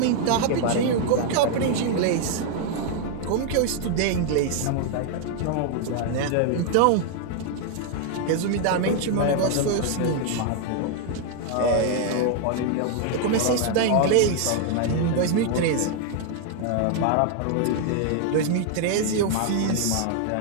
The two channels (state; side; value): different; both; correlation 0.00